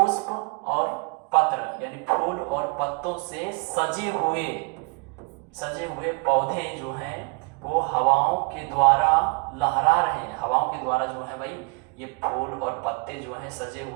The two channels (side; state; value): left; quieter; 32.2 dB